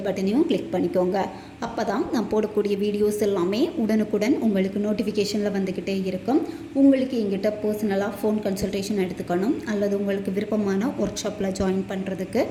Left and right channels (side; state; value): both; identical; correlation 1.00